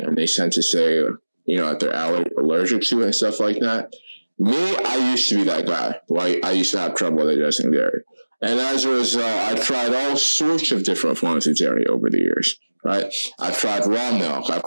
they tend to say, that they're allergic to it and stuff like that. Me, I used to be that guy, right? I used to have trouble digesting dairy. And as a result, I've tried all sorts of different forms of dairy over the years, right? I've tried raw milk.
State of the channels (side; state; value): both; inverted; correlation -1.00